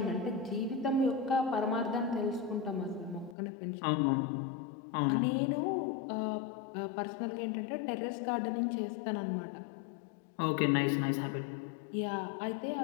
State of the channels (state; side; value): drops out; right; at 3.4 s